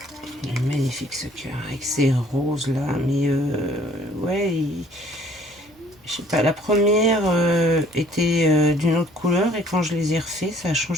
Magnifique ce cœur avec ces roses là, mais ouais, je sais pas, la première était d'une autre couleur et quand je les ai refait, ça a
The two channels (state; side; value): normal; both; correlation 0.57